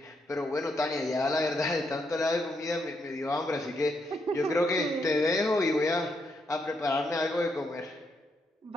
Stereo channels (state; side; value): normal; both; correlation 0.78